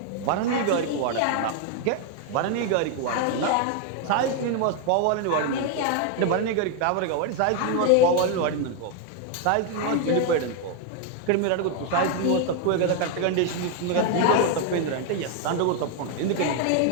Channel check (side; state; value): both; different; correlation 0.01